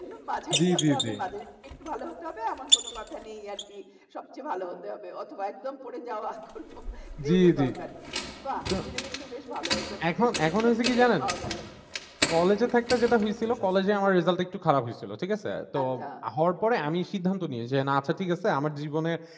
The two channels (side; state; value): both; identical; correlation 1.00